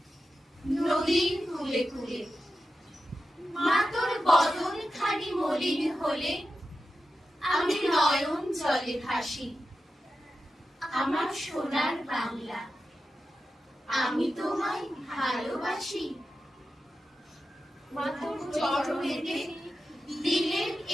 নদীর কূলে কূলে। মা তোর বদন খানি মলিন হলে আমি নয়ন জলে ভাসি। আমার সোনার বাংলা, আমি তোমায় ভালোবাসি। মা তোর চরণেতে দিলেন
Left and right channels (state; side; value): normal; both; correlation 0.91